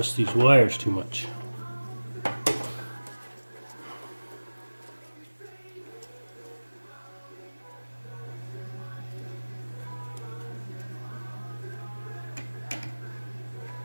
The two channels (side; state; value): both; inverted; correlation -1.00